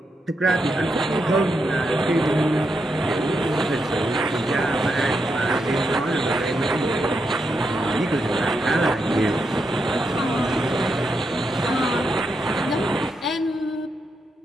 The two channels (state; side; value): normal; both; correlation 0.83